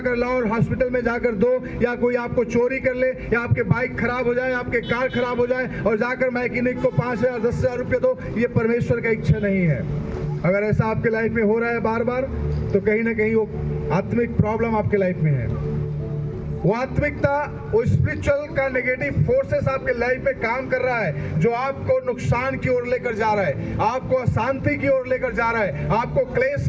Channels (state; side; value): identical; both; correlation 1.00